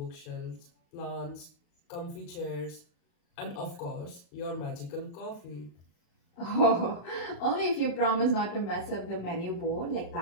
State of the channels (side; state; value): right; late; 35 ms